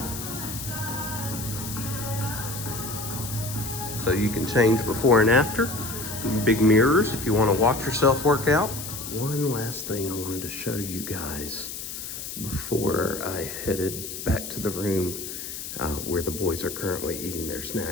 So you can change before and after. Big mirrors if you want to watch yourself work out. One last thing I wanted to show you guys before I headed back to the room where the boys are currently eating their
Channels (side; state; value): left; noise; hiss, 8 dB below the sound